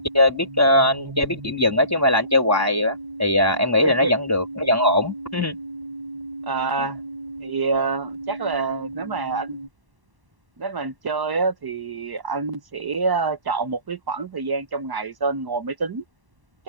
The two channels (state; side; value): late; left; 1.1 ms